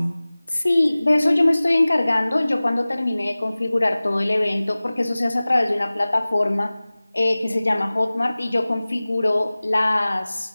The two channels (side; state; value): both; inverted; correlation -0.99